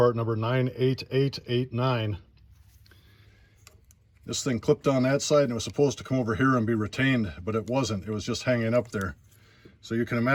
number 98889. This thing clipped on that side and it was supposed to come over here and be retained, but it wasn't. It was just hanging up there. So you can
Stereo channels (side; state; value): both; identical; correlation 1.00